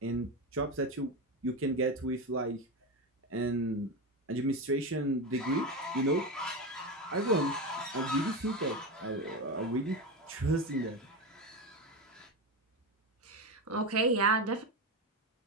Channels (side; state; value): both; normal; correlation 0.17